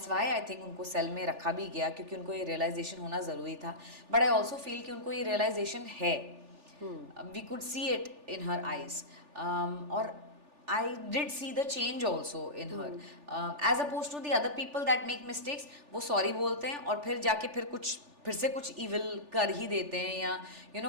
why I think उनको सेल में रखा भी गया, क्योंकि उनको ये रियलाइजेशन होना ज़रूरी था. बट आई ऑल्सो फील कि उनको ये रियलाइजेशन है. We could see it in her eyes. और I did see the change also in her. As opposed to the other people that make mistakes, वो sorry बोलते हैं और फिर जाके फिर से कुछ evil कर ही देते हैं, या you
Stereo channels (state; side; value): late; left; 3.4 ms